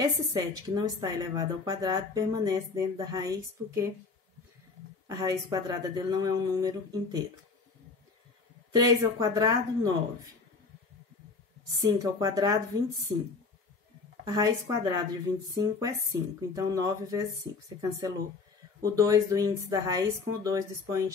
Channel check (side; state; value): right; quieter; 4.4 dB